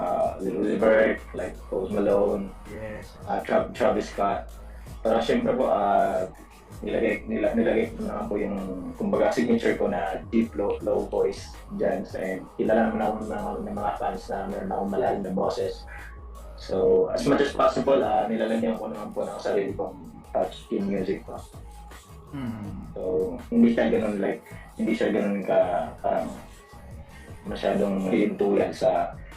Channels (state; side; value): identical; both; correlation 1.00